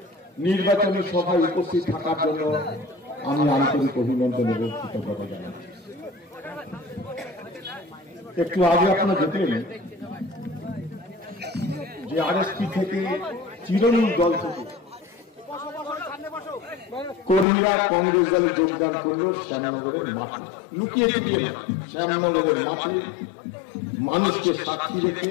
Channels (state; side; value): drops out; right; at 17.4 s